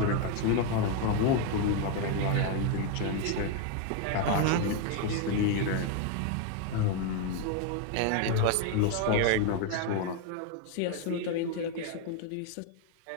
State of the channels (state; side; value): different; both; correlation 0.01